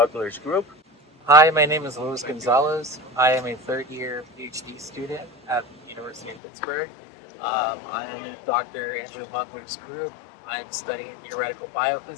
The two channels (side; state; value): right; drops out; at 6.4 s